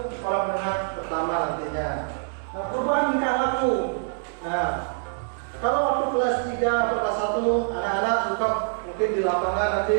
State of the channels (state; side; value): silent; left; 62 dB below the other